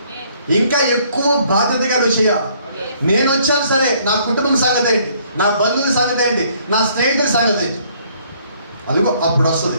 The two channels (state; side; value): inverted; both; correlation -0.63